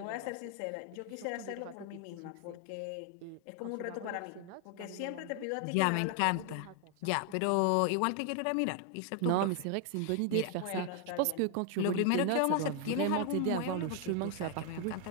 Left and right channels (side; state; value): both; different; correlation 0.00